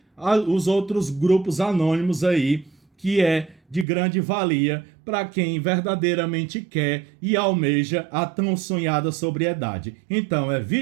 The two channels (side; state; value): left; drops out; at 3.9 s